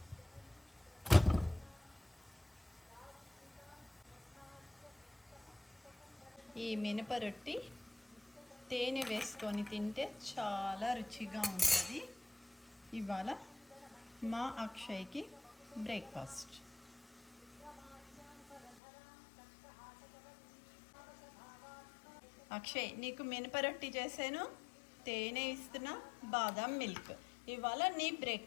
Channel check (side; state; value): right; drops out; at 18.8 s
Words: ఈ మినప రొట్టి తేనె వేసుకొని తింటే చాలా రుచిగా ఉంటుంది. ఇవాళ మా అక్షయ్కి బ్రేక్ఫాస్ట్. అక్షయ్, నీకు మినప రొట్టి చేశాను, తేనె ఇస్తున్నా, బాదం మిల్క్. ఇవాళ నీ